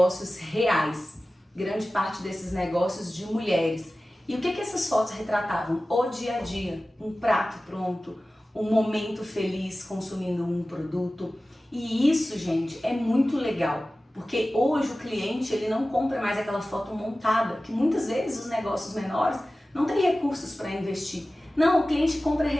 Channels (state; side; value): normal; both; correlation 0.96